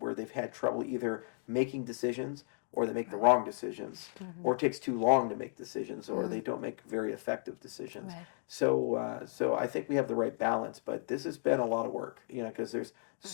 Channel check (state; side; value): silent; right; 55 dB below the other